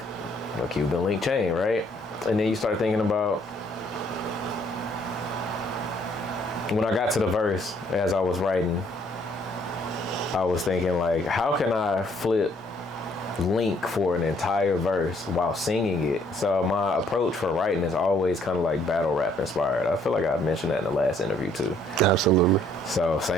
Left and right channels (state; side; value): normal; both; correlation 0.65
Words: a Cuban link chain, right? And then you start thinking about, when I got to the verse, as I was writing, I was thinking like, how can I flip link for an entire verse while singing it? So my approach for writing is always kind of like battle rap inspired. I feel like I mentioned that in the last interview too. Absolutely. So